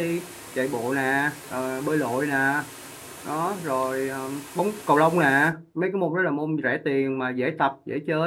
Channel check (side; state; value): both; identical; correlation 1.00